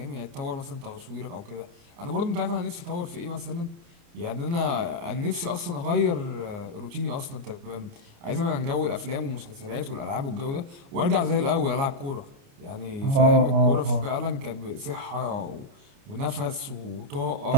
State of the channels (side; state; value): left; late; 29 ms